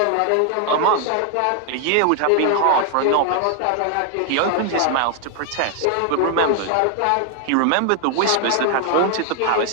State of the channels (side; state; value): both; different; correlation 0.00